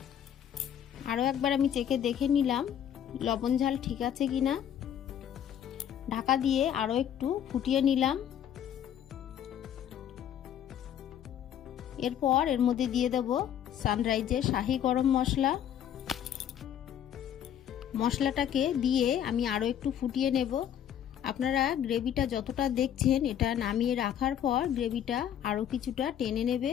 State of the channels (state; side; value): quieter; right; 9.9 dB